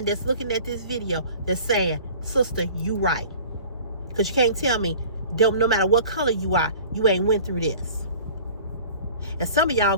that's looking at this video that's saying, sister, you right. Because you can't tell me, no matter what color you are, you ain't went through this. And some of y'all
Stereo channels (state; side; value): inverted; both; correlation -0.45